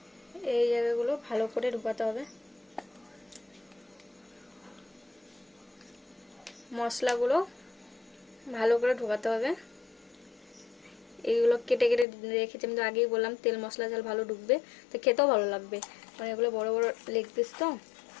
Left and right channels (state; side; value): drops out; right; at 12.1 s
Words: এই জায়গাগুলো ভালো করে ঢোকাতে হবে। মশলাগুলো ভালো করে ঢোকাতে হবে। এইগুলো কেটে কেটে রেখেছি, আমি তো আগেই বললাম তেল মশলা ঝাল ভালো ঢুকবে, তো খেতেও ভালো লাগবে। মানে এগুলো বড় বড় লেগ পিস, তো